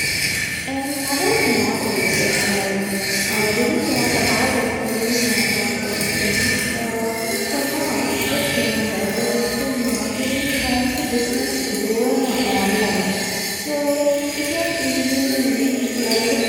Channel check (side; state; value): both; identical; correlation 1.00